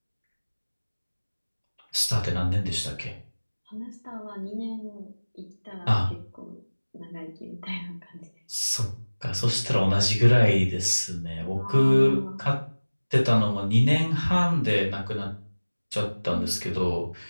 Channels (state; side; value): inverted; both; correlation -1.00